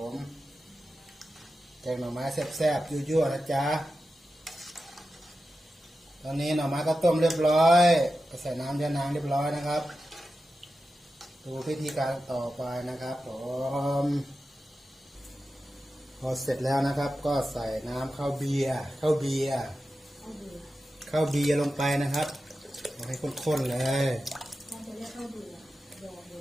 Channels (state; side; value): normal; both; correlation 0.92